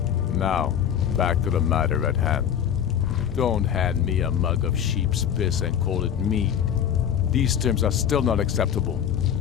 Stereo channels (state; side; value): quieter; right; 9.0 dB